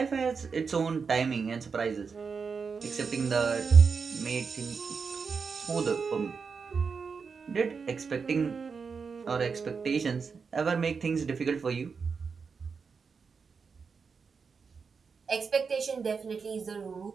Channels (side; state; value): left; quieter; 5.5 dB